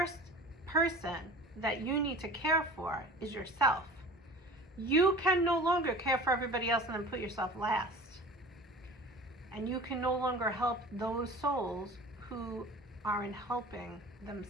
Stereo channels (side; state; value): both; normal; correlation 0.40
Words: person that you need to care for is yourself. You can no longer care for everybody else and then put yourself last. And you can no longer help those souls who aren't helping